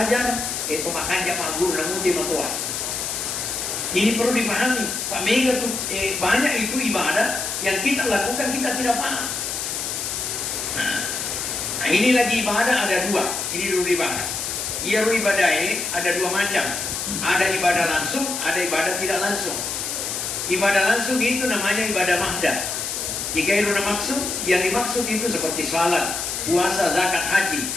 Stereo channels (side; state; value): left; noise; hiss, 3 dB below the sound